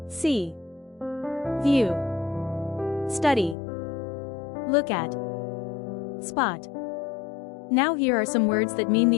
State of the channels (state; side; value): drops out; right; at 3.6 s